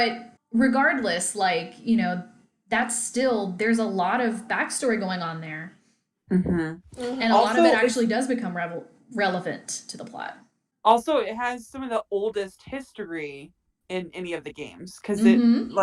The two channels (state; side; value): identical; both; correlation 1.00